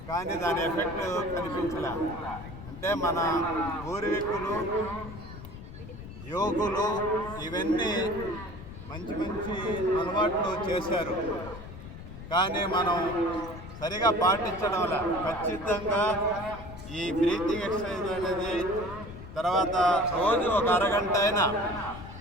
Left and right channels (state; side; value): noise; left; rumble, 13 dB below the sound